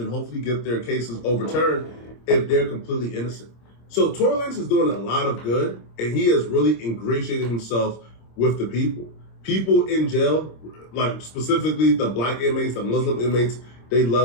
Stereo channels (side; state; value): right; late; 26 ms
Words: hopefully get their cases overturned if they're completely innocent. So Tory Lanez is doing a lot of good, and he has really ingratiated himself with the people. People in jail, like specifically the black inmates, the Muslim inmates, they